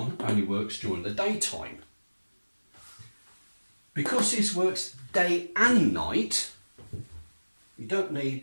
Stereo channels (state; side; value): inverted; both; correlation -1.00